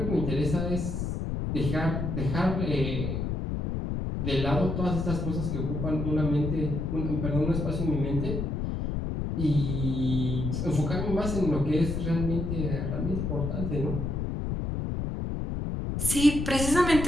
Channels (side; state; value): left; noise; rumble, 2 dB below the sound